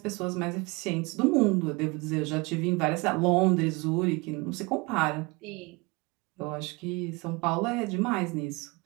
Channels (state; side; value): quieter; left; 26.1 dB